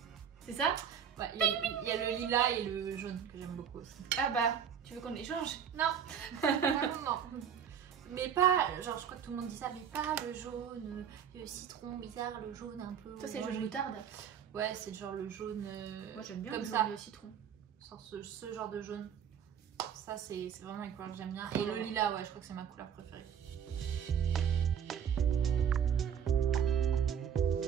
C'est ça? Ouais, il y a le lilas et le jaune que j'aime beaucoup aussi. Ah bah, tu veux qu'on échange? Non. Non. Mais pas, genre je crois que tout le monde dit ça, mais pas le jaune, le citron bizarre, le jaune un peu. Toi, c'est jaune moutarde. Ouais, c'est genre le jaune. Moi, j'aime bien comme le ça. jaune, le citron. Genre ce genre de jaune. Ça, c'est vraiment une couleur que j'aime bien. Et le lilas, ouais, je crois que c'est ma couleur préférée.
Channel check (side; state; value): left; quieter; 8.1 dB